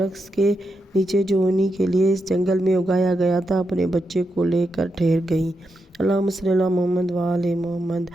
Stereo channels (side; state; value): both; normal; correlation 0.85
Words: کے نیچے جو انہی کے لیے اس جنگل میں اگایا گیا تھا اپنے بچے کو لے کر ٹھہر گئیں۔ اللہم صلی علی محمد و آل محمد۔